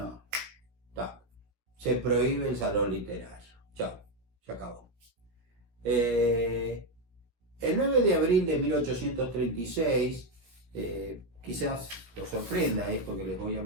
se prohíbe el salón literario. Chao, se acabó. El 9 de abril de 1836, quizás lo sorprenda esto que les voy a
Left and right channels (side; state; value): left; late; 17 ms